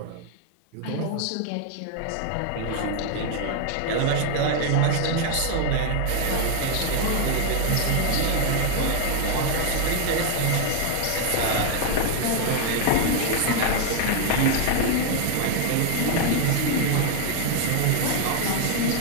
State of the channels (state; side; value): different; both; correlation 0.00